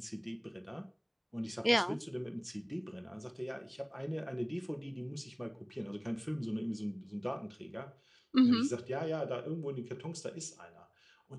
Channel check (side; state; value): both; identical; correlation 1.00